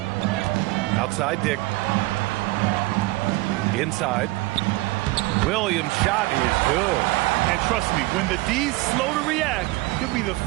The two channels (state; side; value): quieter; left; 20.9 dB